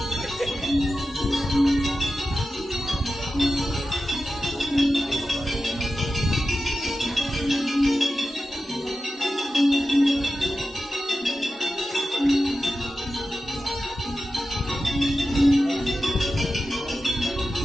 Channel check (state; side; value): normal; both; correlation 0.92